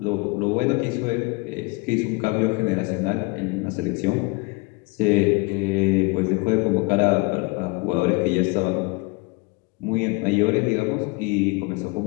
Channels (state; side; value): quieter; right; 27.1 dB